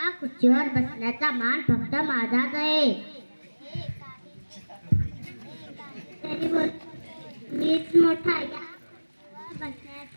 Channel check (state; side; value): inverted; both; correlation -1.00